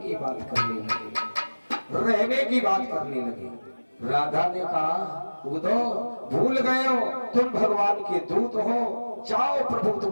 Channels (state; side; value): inverted; both; correlation -1.00